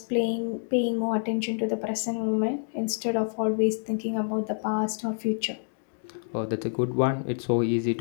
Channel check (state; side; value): silent; right; digital silence